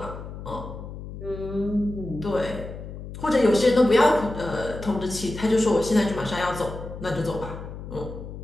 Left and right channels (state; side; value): noise; left; hum, 11 dB below the sound